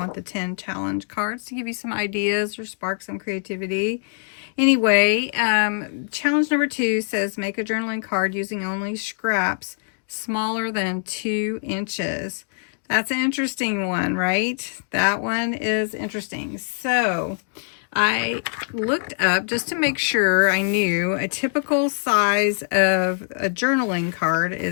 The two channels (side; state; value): right; silent; digital silence